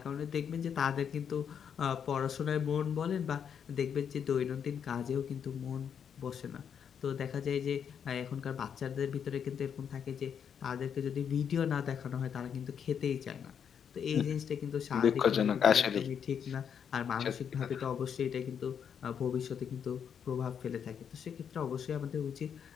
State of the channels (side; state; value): right; quieter; 7.8 dB